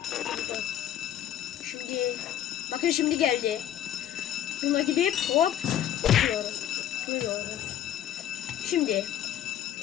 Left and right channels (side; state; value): right; quieter; 11.3 dB